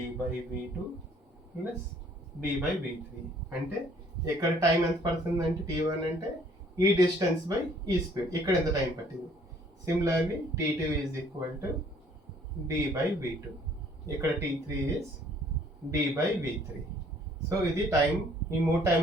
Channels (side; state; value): both; normal; correlation 0.59